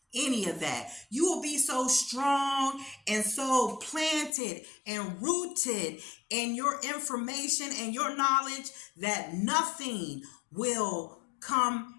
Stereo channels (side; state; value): right; drops out; at 4.3 s